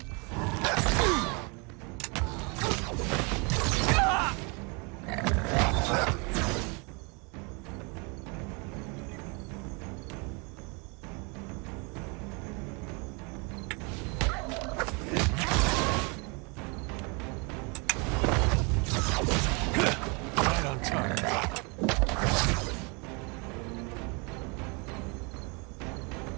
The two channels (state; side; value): quieter; left; 31.3 dB